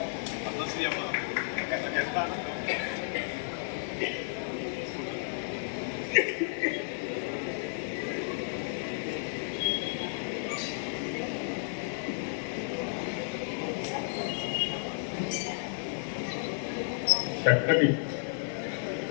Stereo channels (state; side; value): silent; right; 56 dB below the other